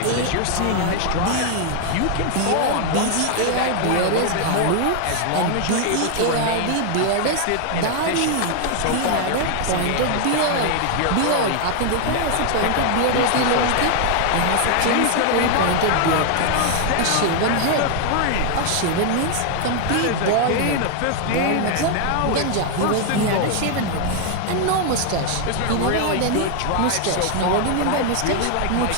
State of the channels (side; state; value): both; different; correlation 0.00